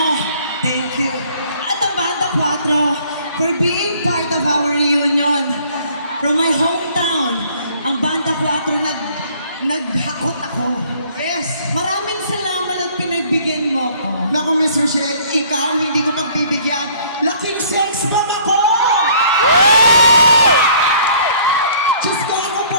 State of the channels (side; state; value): both; inverted; correlation -0.57